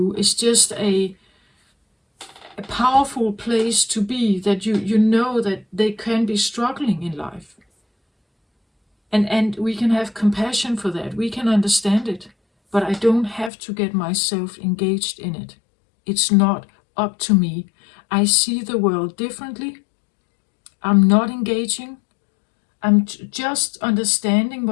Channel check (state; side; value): drops out; right; at 13.5 s